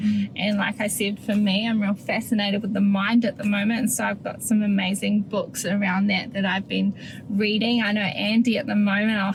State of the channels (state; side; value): identical; both; correlation 1.00